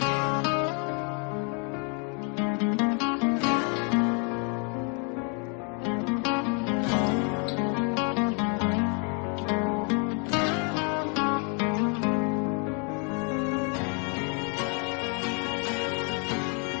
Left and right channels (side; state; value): right; quieter; 37.4 dB